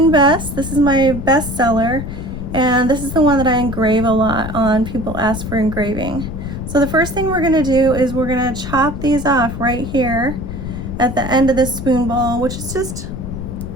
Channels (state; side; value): noise; left; rumble, 7 dB below the sound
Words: Bess, this is my bestseller, and this is the one that I engrave a lot on. People ask for engraving. So the first thing we're going to do is we're going to chop these off right here at the end of this spoon bowl, which is just